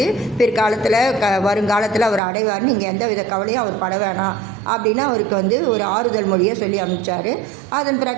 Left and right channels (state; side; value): drops out; left; at 2.2 s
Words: பிற்காலத்தில் வருங்காலத்தில் அவர் அடைவார், நீங்கள் எந்த வித கவலையும் அவர் பட வேணாம் அப்படின்னு அவருக்கு வந்து ஒரு ஆறுதல் மொழியை சொல்லி அனுப்பிச்சார். அதன்